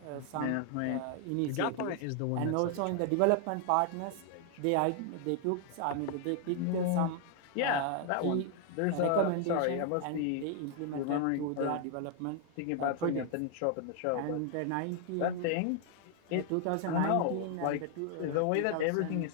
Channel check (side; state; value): both; different; correlation 0.00